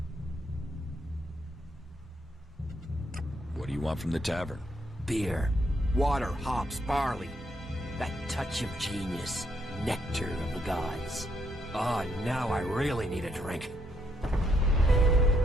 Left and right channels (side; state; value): both; normal; correlation 0.75